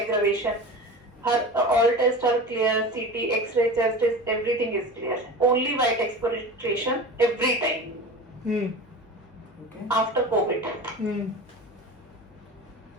aggravation. Her all tests are clear, CT, X-ray, chest test, everything is clear. Only white expectoration every time okay after COVID.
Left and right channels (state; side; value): normal; both; correlation 0.32